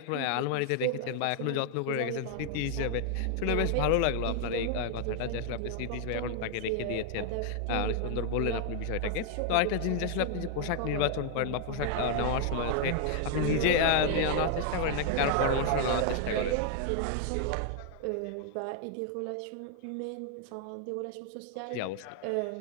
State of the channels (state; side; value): different; both; correlation 0.00